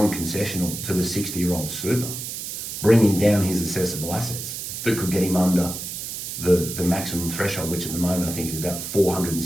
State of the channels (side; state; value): right; noise; hiss, 6 dB below the sound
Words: to the 60-year-old super, bringing down his assessable assets that could get him under the maximum threshold, which at the moment I think is about